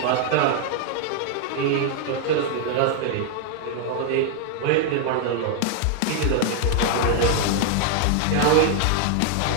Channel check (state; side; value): different; both; correlation 0.00